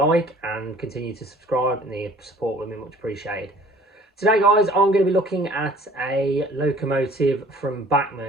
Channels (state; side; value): normal; both; correlation 0.52